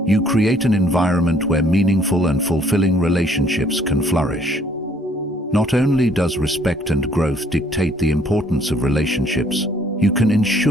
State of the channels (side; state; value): both; normal; correlation 0.62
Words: you create an environment where meaningful and fulfilling relationships can flourish. Not only does respect and growth dictate the importance of relationships, you can